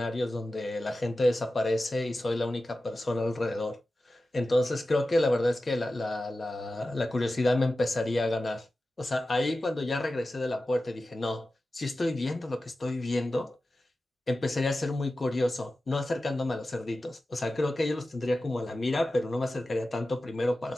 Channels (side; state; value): both; normal; correlation 0.94